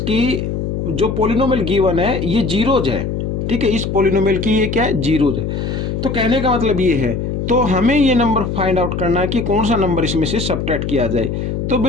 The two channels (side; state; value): left; noise; hum, 3 dB below the sound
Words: जो पोलिनोमियल गिवन है ये जीरोज है। ठीक है, इस पोलिनोमियल की ये क्या है, जीरोज है। तो कहने का मतलब ये है, तो हमें ये नंबर फाइंड आउट करना है कि कौन सा नंबर इसमें से सब्ट्रैक्ट किया जाए। तो